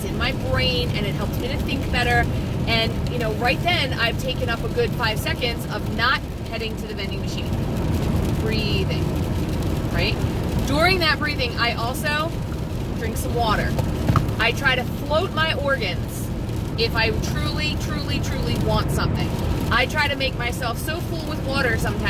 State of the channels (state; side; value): identical; both; correlation 1.00